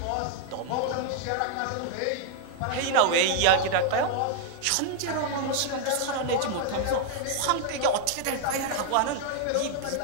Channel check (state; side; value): different; both; correlation -0.01